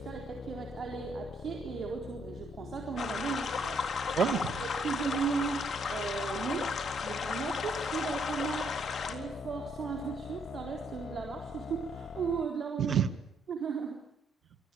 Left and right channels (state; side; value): normal; both; correlation 0.70